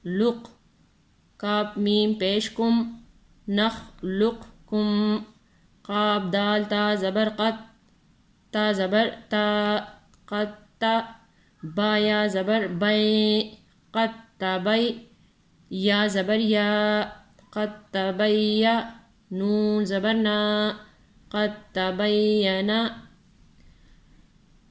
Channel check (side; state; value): both; identical; correlation 1.00